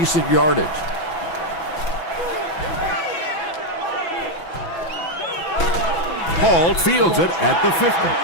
yardage. Hall fields it at the 50.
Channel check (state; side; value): late; right; 6.1 ms